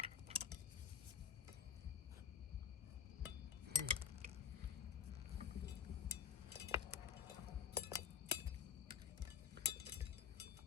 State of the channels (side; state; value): right; quieter; 8.1 dB